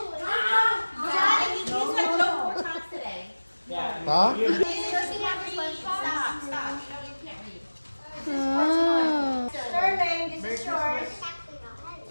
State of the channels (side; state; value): both; inverted; correlation -1.00